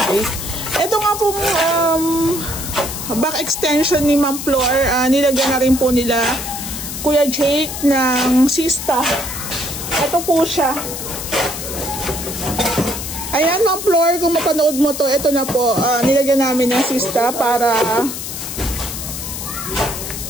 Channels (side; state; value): left; noise; hiss, 7 dB below the sound